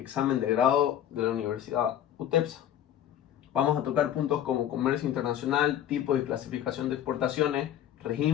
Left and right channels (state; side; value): quieter; right; 10.9 dB